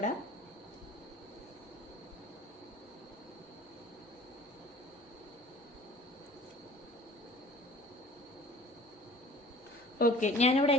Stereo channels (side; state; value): both; normal; correlation 0.47